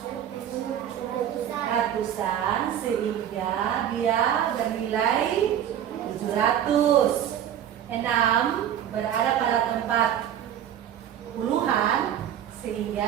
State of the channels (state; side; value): quieter; left; 10.2 dB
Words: ratusan, sehingga dia bernilai 700. 6 berada pada tempat puluhan,